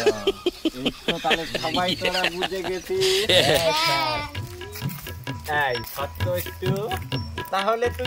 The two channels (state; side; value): identical; both; correlation 1.00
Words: এই তো তাহলে সবাই তোরা বুঝে গেছিস। এই সত্য একটু, তাহলে